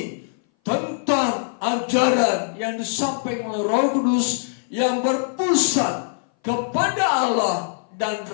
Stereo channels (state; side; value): silent; right; 59 dB below the other